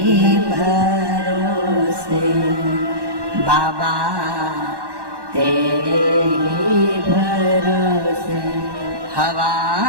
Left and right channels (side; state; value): left; late; 1.1 ms